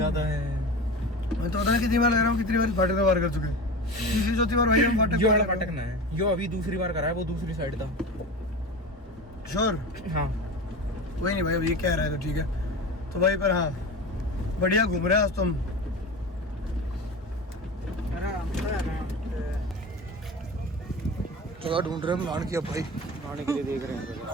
है। मैं तो पता नहीं कितनी बार लग रहा हूँ, कितनी बार फाटक में पार कर चुके हैं। तीसरी चौथी बार भाई हम फाटक ना है, यो अभी दूसरी बार करा है, वो दूसरी साइड था। श्योर? हाँ वही नहीं भाई, अब ये कह रहा है तो ठीक है। तो भाई पर हाँ बढ़िया घूम रहे हैं आज तो हम। जगह ढूंढ रहे हैं हम नहाने की, अब भाई नहाने के लिए देख रहे हैं।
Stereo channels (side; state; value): both; normal; correlation 0.30